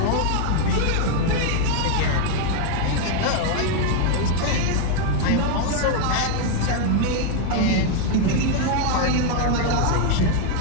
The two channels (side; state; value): both; different; correlation 0.00